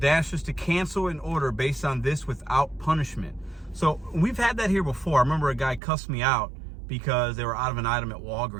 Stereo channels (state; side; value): drops out; left; at 5.8 s